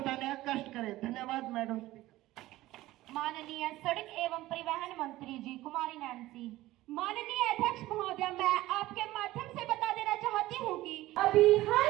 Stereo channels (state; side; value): quieter; left; 16.9 dB